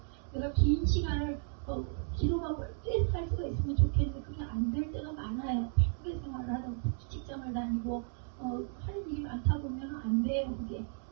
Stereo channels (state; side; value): silent; left; 55 dB below the other